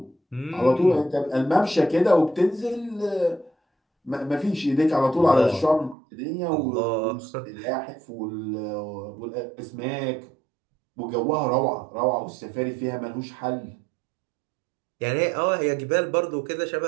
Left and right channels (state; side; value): drops out; left; at 6.0 s